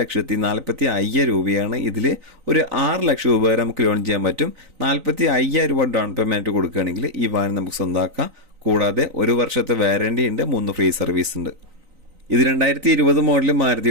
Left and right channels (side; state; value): left; late; 3.9 ms